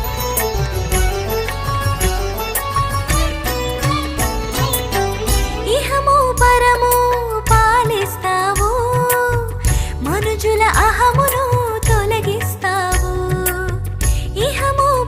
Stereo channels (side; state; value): both; identical; correlation 1.00